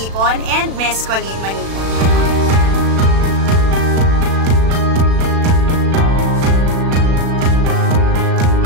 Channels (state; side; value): late; left; 36 ms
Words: and Miss Colleen Manipon.